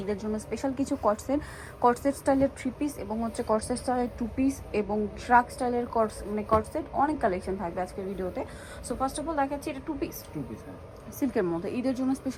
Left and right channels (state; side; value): identical; both; correlation 1.00